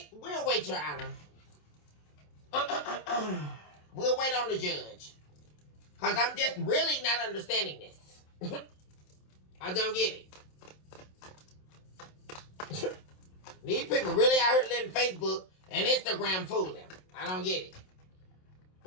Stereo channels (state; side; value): late; right; 27 ms